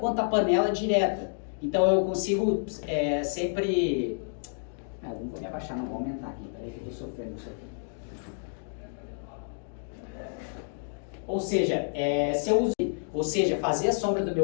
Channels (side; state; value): right; silent; digital silence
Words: a panela direta. Então eu consigo sempre... não vou me abaixar, não, vou aumentar aqui, peraí que eu estou sofrendo isso aqui. Ou seja, se eu uso, fazer a sombra do